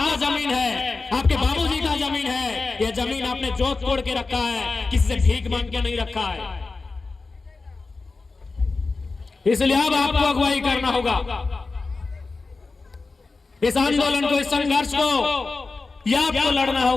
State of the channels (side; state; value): right; quieter; 3.9 dB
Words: जमीन है, आपके बाबूजी का जमीन है, ये जमीन आपने जोत तोड़ के रखा है, किसी से भीख मांग के नहीं रखा है। इसलिए अब आपको अगुवाई करना होगा इस आंदोलन को, इस संघर्ष को, यह आपको लड़ना